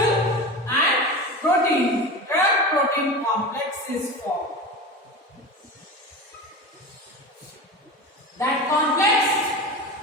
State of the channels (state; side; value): normal; both; correlation 0.28